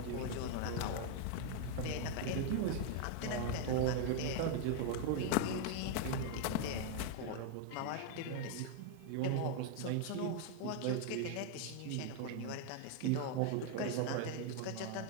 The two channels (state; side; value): different; both; correlation 0.00